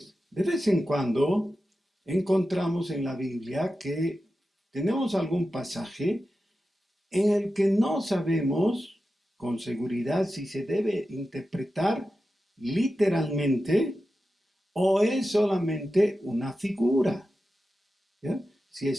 de vez en cuando encontramos en la Biblia que tenemos algún pasaje en el que no sabemos con seguridad si se debe interpretar literalmente o es solamente una figura. ¿Ya? Si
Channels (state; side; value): normal; both; correlation 0.92